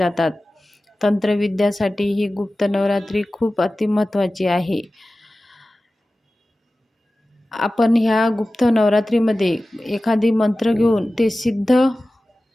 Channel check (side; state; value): both; normal; correlation 0.96